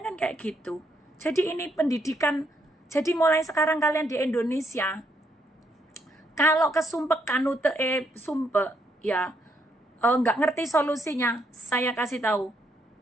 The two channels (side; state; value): both; normal; correlation 0.75